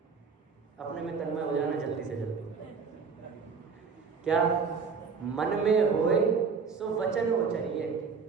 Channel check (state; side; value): quieter; left; 5.5 dB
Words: अपने में तन्मय हो जाना जल्दी से जल्दी। क्या? मन में होए सो वचन उचरिए,